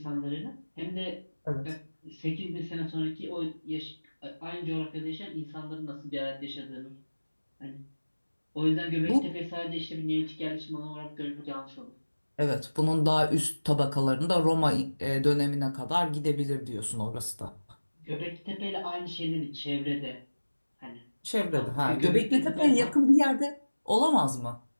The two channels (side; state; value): both; inverted; correlation -1.00